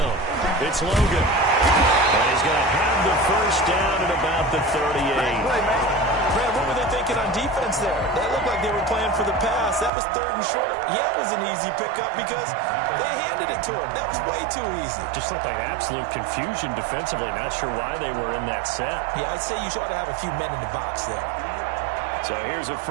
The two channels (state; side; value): drops out; left; at 9.9 s